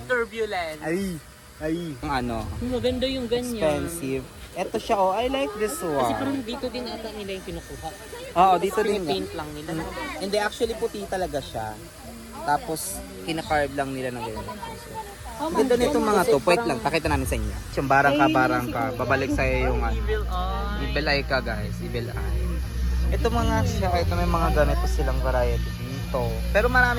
Turbulent. Ay. Ang Maganda yung ganyan. expensive. Ito siya, oh, I like this Kasi parang one. dito din ata nila yung kinukuha. Oo, dito din. Paint lang nila. Hindi, actually puti talaga siya. Tapos, kinakarve lang nila ng ganyan. Ang ganda nitong mga to. Wait lang, pakita namin sa inyo. Yung barang ka. Babalik sa'yo yung Evil eye. evil eye ka, guys. Evil eye. Ito mga siya, ito may mga ganito silang variety dito. Pero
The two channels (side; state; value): both; identical; correlation 1.00